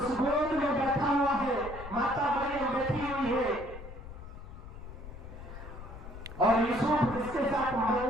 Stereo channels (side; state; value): left; noise; rumble, 12 dB below the sound